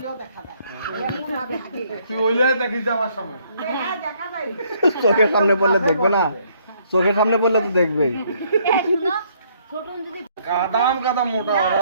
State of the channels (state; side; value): inverted; both; correlation -0.67